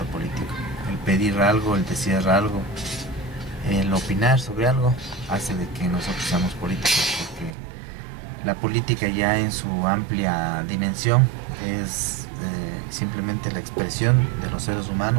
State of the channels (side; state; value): left; drops out; at 7.5 s